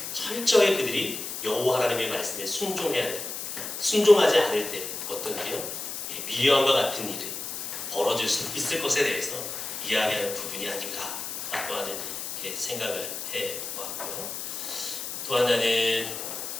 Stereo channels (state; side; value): noise; left; hiss, 6 dB below the sound